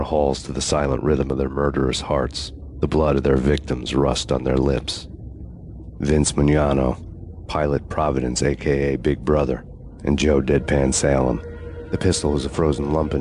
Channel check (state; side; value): identical; both; correlation 1.00